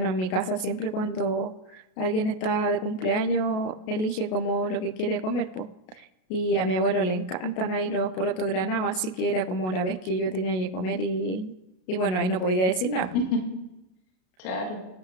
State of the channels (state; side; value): late; right; 33 ms